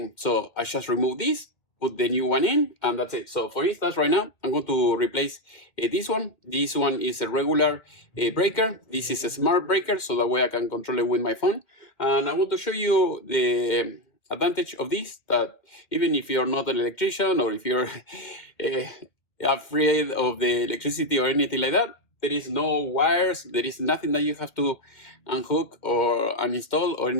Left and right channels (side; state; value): right; late; 2.2 ms